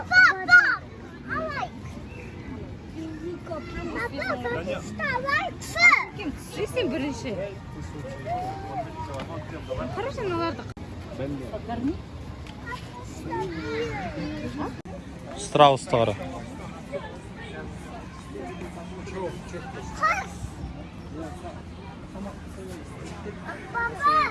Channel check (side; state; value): both; identical; correlation 1.00